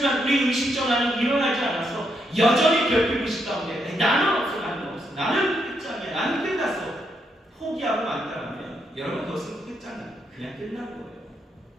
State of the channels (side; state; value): both; normal; correlation 0.78